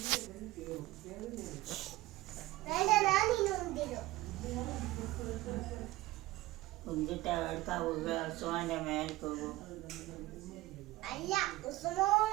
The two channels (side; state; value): left; quieter; 18.2 dB